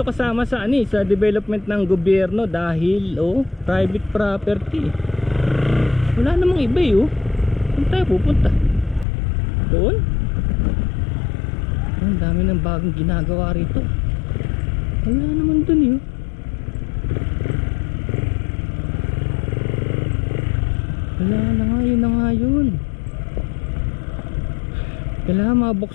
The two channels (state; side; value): drops out; right; at 9.1 s